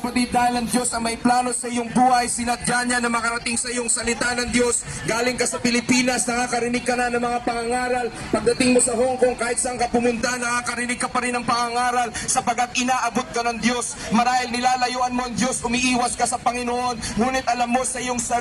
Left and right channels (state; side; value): identical; both; correlation 1.00